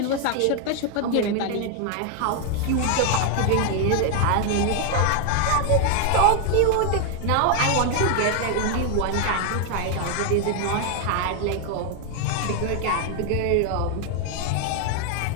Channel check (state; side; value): different; both; correlation 0.00